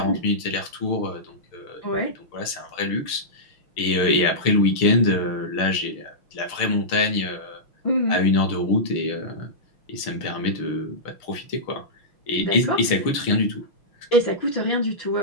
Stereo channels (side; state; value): right; late; 6.5 ms